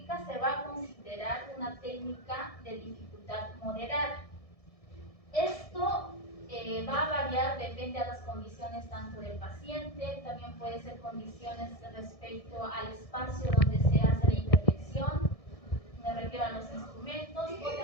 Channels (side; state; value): right; late; 1.6 ms